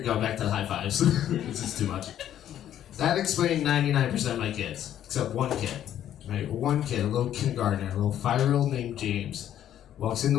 going back to the high fives. This is too much. That explained 99% of my kids, except one kid. Right? One kid, a little kindergartner, a little 5-year-old named James, walks into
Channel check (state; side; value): quieter; right; 11.1 dB